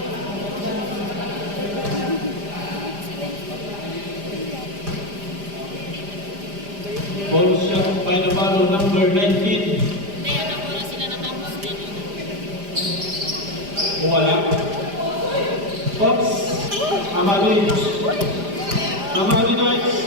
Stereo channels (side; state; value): left; late; 5.0 ms